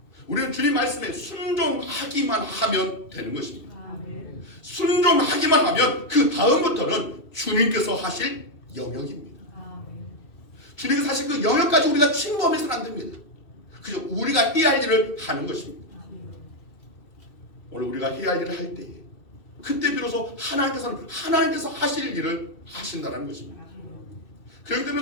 우리는 주님 말씀에 순종하기만 하면 되는 것입니다. 순종하기만 하면 그 다음부터는 주님께서 하실 영역입니다. 주님께서 하실 그 영역까지 우리가 침범해서는 안 됩니다. 그저 우리가 해야 할 일을 하는 것입니다. 오늘 우리가 해야 할 일을 할 때에 그때 비로소 하나님께서 하실 일을 하신다는 것입니다. 그렇기 때문에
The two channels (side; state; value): right; late; 2.6 ms